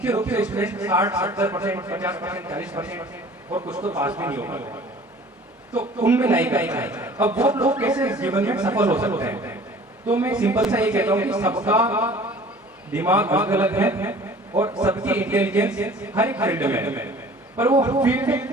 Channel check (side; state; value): both; normal; correlation 0.47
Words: रूप से स्टूडेंट 60-70%, 50%, 40% और कुछ तो पास भी नहीं होगा, तो उनमें लाइक है। अब वो लोग कैसे जीवन में सफल हो सकते हैं? तो मैं सिंपल सा ये कहता हूँ कि सबका दिमाग अलग अलग है और सबकी इंटेलिजेंस हर एक फील्ड में है, पर वो